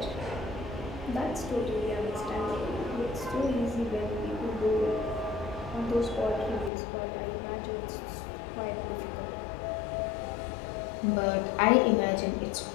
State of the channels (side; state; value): right; drops out; at 6.7 s